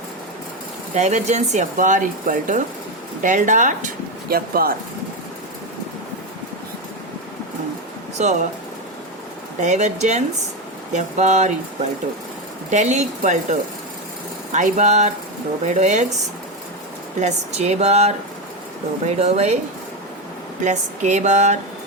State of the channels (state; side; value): normal; both; correlation 0.12